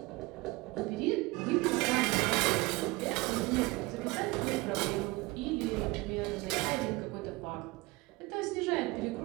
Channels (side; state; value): left; quieter; 22.8 dB